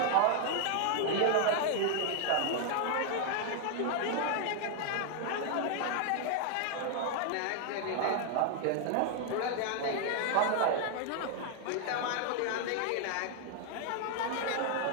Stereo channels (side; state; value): both; different; correlation 0.00